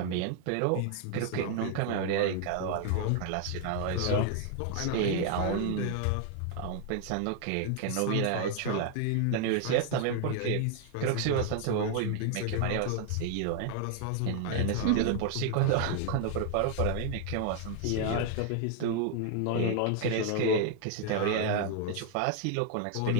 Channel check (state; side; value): different; both; correlation 0.00